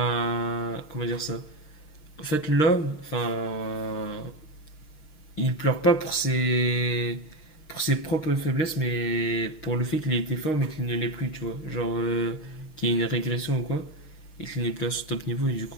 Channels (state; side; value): late; right; 6.4 ms